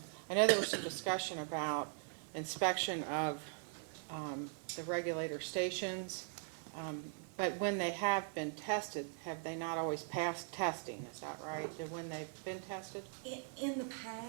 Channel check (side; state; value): left; silent; 51 dB below the other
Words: know there was some discussion about inspection of the regulator stations, but when they have been tested, have they not always passed testing? Is that right? When they've been tested? In the